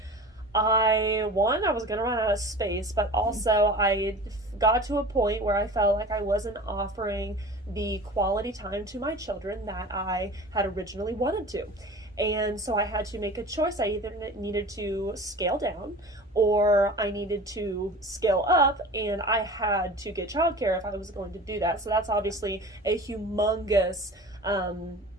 I was going to run out of space, but also I got to a point where I felt like I wasn't offering the quality time to my children that I had originally wanted to. And so I had to make a choice. I either needed to scale down or I needed to scale up, and I had to get childcare if I was going to do that. So that's obviously a humongous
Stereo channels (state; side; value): normal; both; correlation 0.38